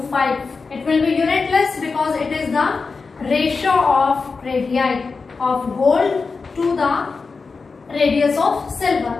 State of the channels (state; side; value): quieter; right; 4.5 dB